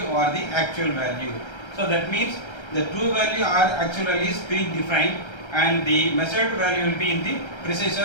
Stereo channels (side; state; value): right; late; 1.3 ms